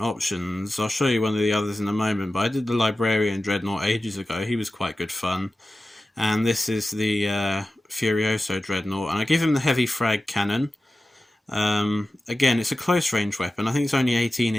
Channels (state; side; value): normal; both; correlation 0.94